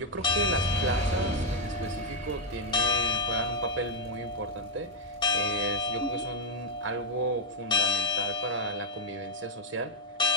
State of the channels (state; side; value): normal; both; correlation 0.01